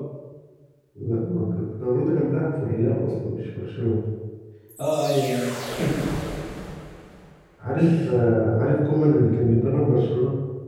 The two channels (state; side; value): identical; both; correlation 1.00